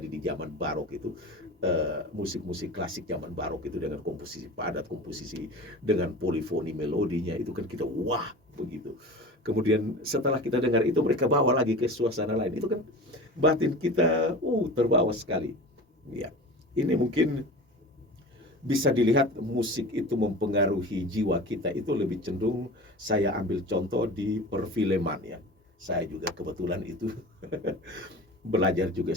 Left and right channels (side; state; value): both; normal; correlation 0.35